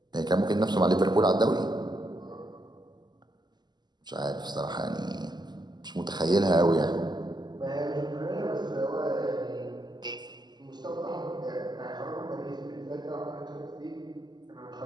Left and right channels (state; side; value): late; left; 0.21 ms